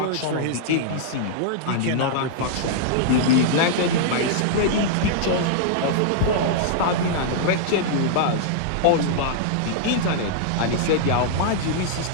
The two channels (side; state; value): both; different; correlation -0.01